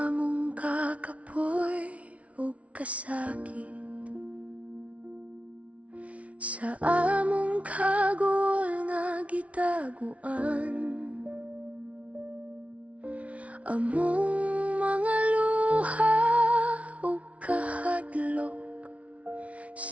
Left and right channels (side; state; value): left; late; 0.065 ms